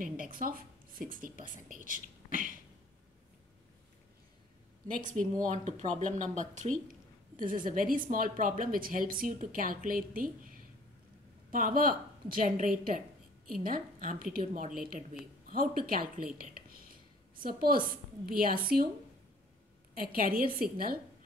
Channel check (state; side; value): normal; both; correlation 0.55